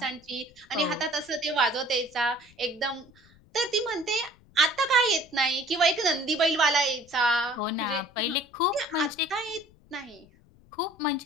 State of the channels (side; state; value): left; noise; rumble, 28 dB below the sound